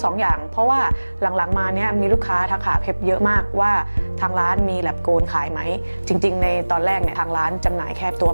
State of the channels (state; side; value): inverted; both; correlation -1.00